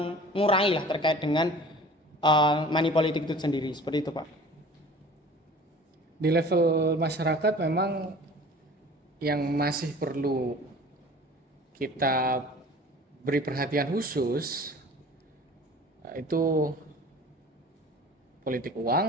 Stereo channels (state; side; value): normal; both; correlation 0.44